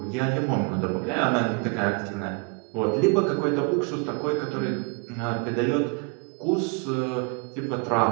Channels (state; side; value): quieter; left; 34.5 dB